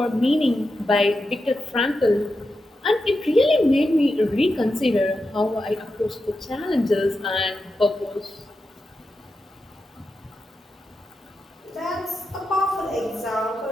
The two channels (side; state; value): both; normal; correlation 0.89